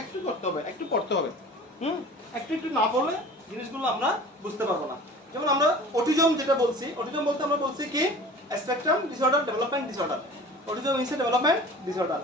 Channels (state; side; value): normal; both; correlation 0.42